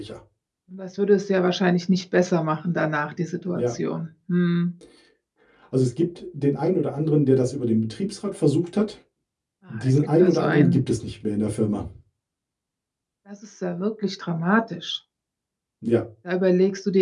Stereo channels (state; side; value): identical; both; correlation 1.00